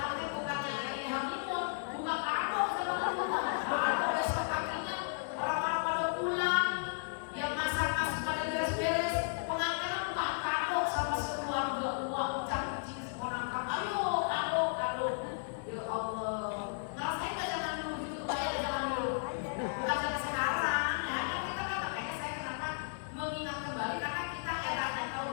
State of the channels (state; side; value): silent; right; digital silence